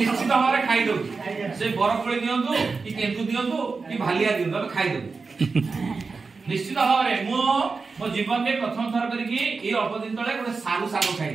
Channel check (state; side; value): quieter; left; 4.4 dB